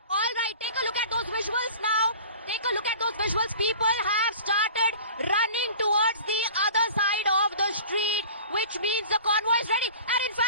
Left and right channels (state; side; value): inverted; both; correlation -0.42